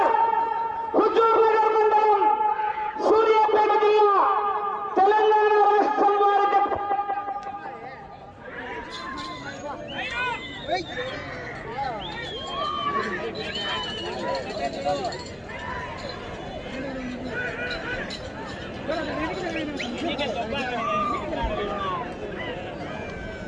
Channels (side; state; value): both; identical; correlation 1.00